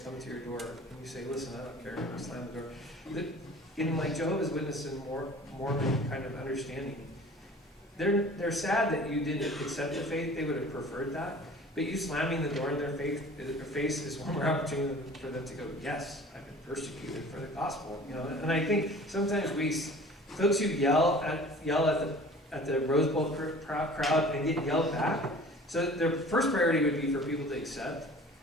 to your door and you say, listen, I don't care, and you slam the door, in like Jehovah's Witness and Mormon kind of understanding, they're sad that you didn't accept the faith. They would have preferred that. But you slamming the door in their face is one more opportunity for them to go, yes, I've been persecuted for the gospel. And I think sometimes folks who yell at the Rose Bowl crowd and get yelled back. So their first priority would be for people to accept.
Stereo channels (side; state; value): both; normal; correlation 0.45